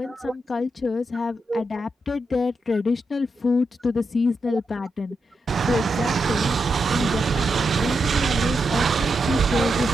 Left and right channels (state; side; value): normal; both; correlation 0.85